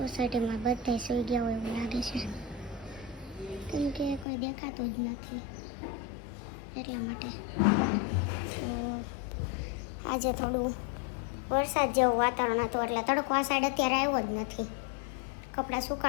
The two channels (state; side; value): drops out; right; at 4.2 s